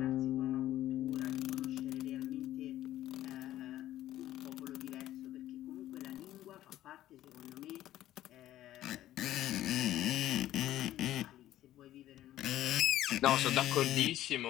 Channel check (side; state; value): right; quieter; 13.6 dB